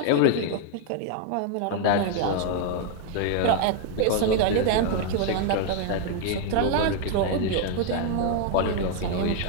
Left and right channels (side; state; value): both; different; correlation 0.00